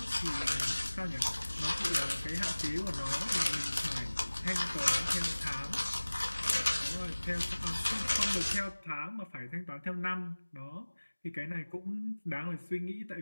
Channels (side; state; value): both; inverted; correlation -1.00